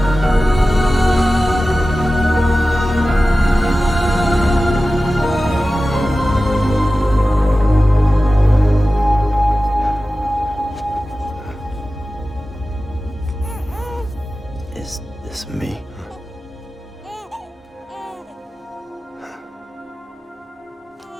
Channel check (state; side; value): normal; both; correlation 0.95